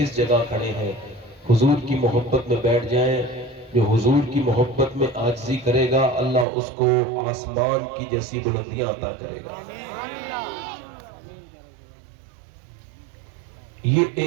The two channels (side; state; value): left; drops out; at 6.5 s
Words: جگہ کھڑے ہیں، حضور کی محبت میں بیٹھ جائیں. جو حضور کی محبت میں عاجزی کرے گا اللہ اس کو آسمان کی جیسی بلندیاں عطا کرے گا. یہ